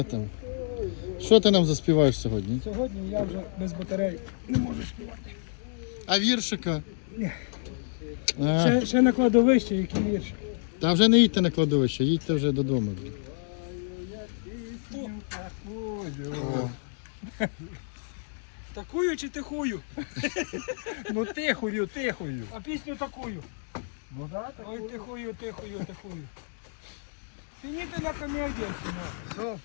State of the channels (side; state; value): right; silent; digital silence